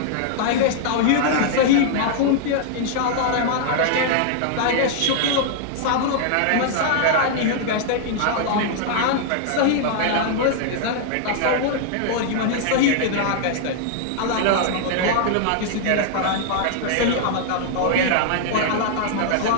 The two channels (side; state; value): both; different; correlation -0.01